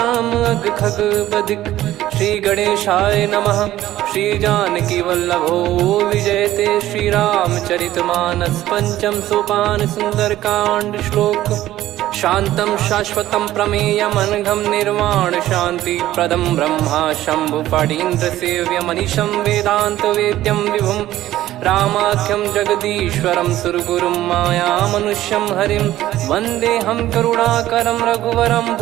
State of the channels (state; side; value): quieter; left; 14.3 dB